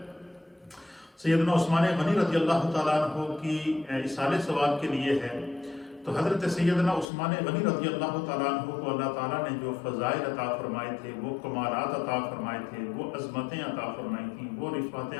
سیدنا عثمان غنی رضی اللہ تعالیٰ عنہ کی اصالِ ثواب کے لیے ہے، تو حضرت سیدنا عثمان غنی رضی اللہ تعالیٰ عنہ کو اللہ تعالیٰ نے جو فضائل عطا فرمائے تھے، وہ کمالات عطا فرمائے تھے، وہ عظمتیں عطا فرمائی تھیں، وہ رفعتیں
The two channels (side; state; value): right; drops out; at 7.1 s